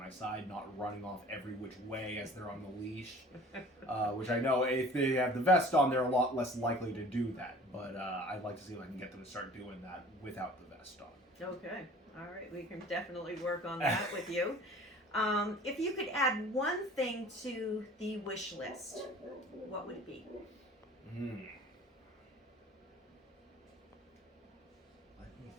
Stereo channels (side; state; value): both; normal; correlation 0.47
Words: side, not running off every which way as they're on the leash, which I know if they have the vest on, they're a lot less likely to do that, but I'd like to see if I can get them to start doing that without the vest on. Okay. All right. We can definitely work on that with you. If you could add one thing to the wish list, what would it be? Let me think.